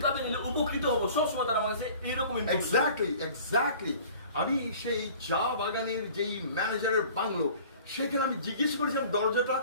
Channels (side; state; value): both; inverted; correlation -0.47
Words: নিলে উপকৃত হবো, সব সময় তারা আমার কাছে এইরকম এক্স্যাক্টলি আমি সেই চা বাগানের যেই ম্যানেজারের বাংলো, সেখানে আমি জিজ্ঞেস করেছিলাম দরজাটা